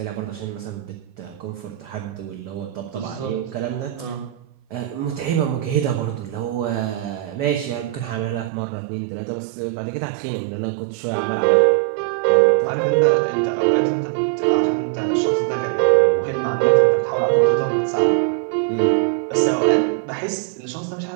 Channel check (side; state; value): left; drops out; at 8.5 s